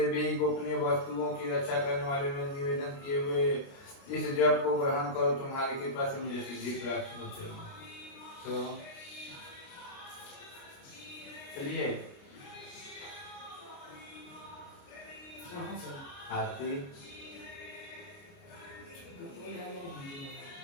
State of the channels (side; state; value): right; late; 29 ms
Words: भी गोपनीय वस्तुओं की रक्षा करने वाले में निवेदन किए हुए इस जप को ग्रहण करो। तुम्हारी कृपा से मुझे सिद्धि प्राप्त होती है। तो चलिए आरती